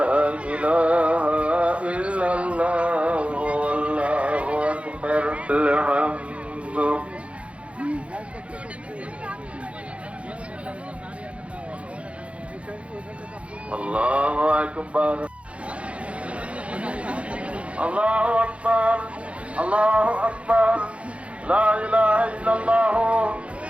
إله إلا الله والله أكبر الحمد الله أكبر الله أكبر الله أكبر لا إله إلا الله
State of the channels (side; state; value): left; late; 0.062 ms